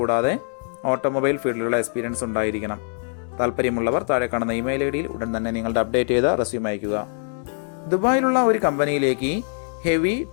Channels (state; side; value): silent; right; digital silence